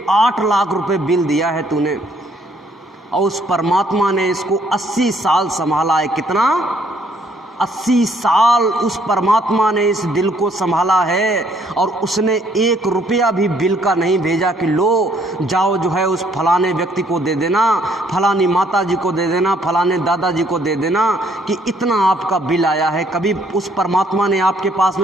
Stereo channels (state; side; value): normal; both; correlation 0.66